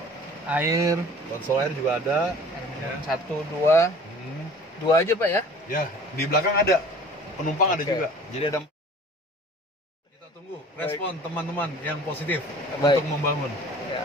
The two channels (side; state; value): both; normal; correlation 0.46